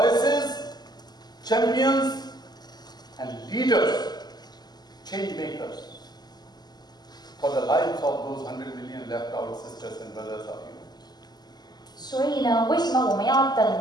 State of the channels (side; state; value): right; late; 0.20 ms